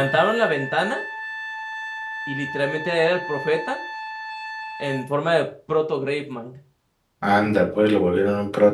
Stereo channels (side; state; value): both; identical; correlation 1.00